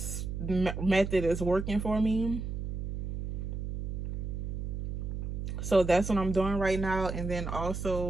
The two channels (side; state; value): right; noise; hum, 4 dB below the sound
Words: method is working for me. So that's what I'm doing right now. And then